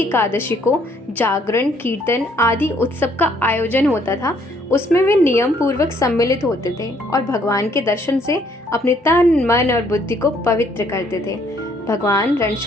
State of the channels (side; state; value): both; normal; correlation 0.65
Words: को जागरण, कीर्तन आदि उत्सव का आयोजन होता था। उसमें वे नियम पूर्वक सम्मिलित होते थे और भगवान के दर्शन से अपने तन, मन और बुद्धि को पवित्र करते थे। भगवान